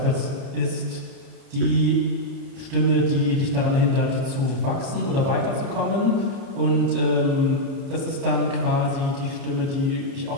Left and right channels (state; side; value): late; left; 28 ms